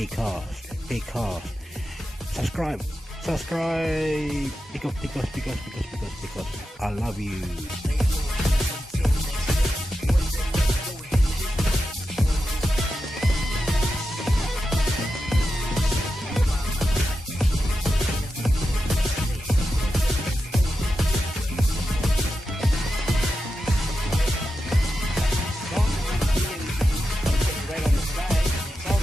Subscribe. Because. I love you.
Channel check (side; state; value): both; normal; correlation 0.90